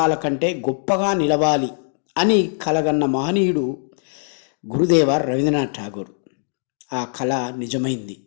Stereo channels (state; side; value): silent; right; digital silence